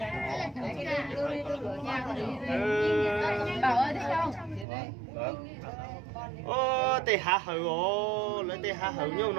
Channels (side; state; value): left; drops out; at 4.7 s